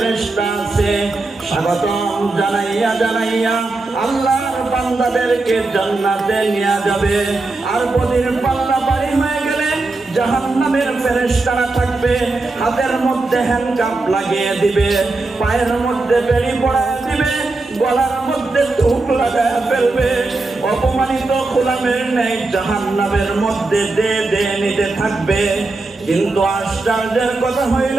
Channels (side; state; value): left; quieter; 3.3 dB